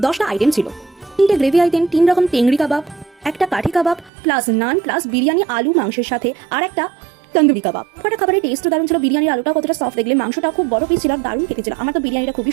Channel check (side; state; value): left; drops out; at 4.1 s